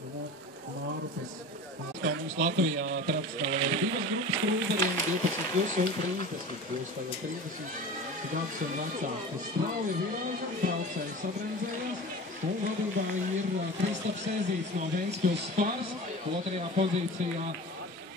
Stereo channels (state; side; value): normal; both; correlation 0.34